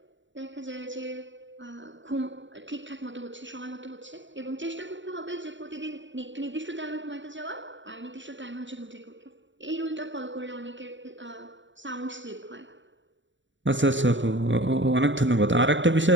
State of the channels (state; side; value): late; left; 0.54 ms